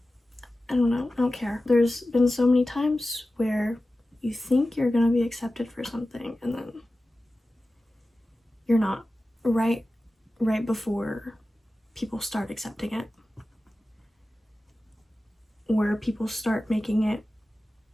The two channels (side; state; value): both; normal; correlation 0.95